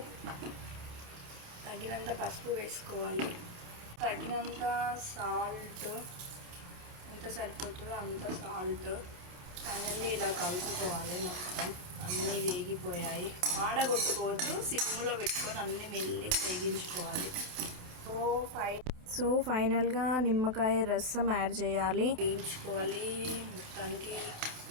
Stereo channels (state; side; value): late; left; 27 ms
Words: తగినంత పసుపు వేసుకోవాలి. తగినంత సాల్ట్, ఎంత సరిపోతుందో అంత సాల్ట్. ఫైనల్లీ ఇలా కలుపుకోవాలి. మొత్తం అన్నీ వేగిపోయాయి. ఆడగొట్టుకోవద్దు, సిమ్లో పెట్టుకొని అన్నీ మెల్లి వేగించుకోవాలి. సో ఫైనల్గా నిమ్మకాయ రసం యాడ్ చేయాలి, వేయించుకోవాలి. మొత్తానికి